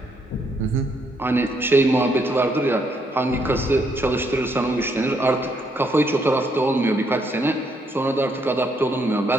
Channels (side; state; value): both; normal; correlation 0.73